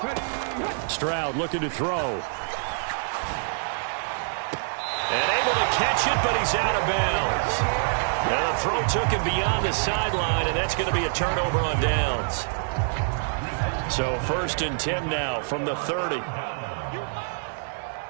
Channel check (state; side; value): silent; left; digital silence